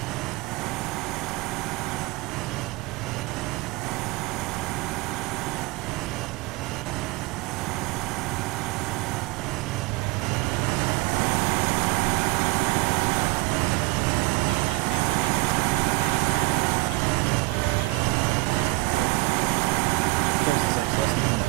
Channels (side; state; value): left; quieter; 23.0 dB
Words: Yeah, I'm gonna see if I can jump in this Panther and then we'll just, I'll bring it over and we can jack the tires off. Saracen 6, less than 3